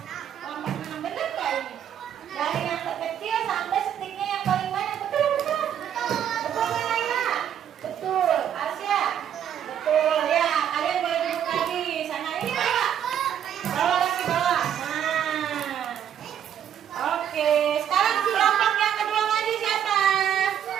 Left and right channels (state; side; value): quieter; left; 9.6 dB